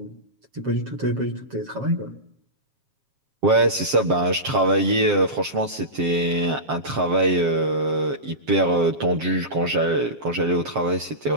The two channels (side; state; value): left; late; 7.4 ms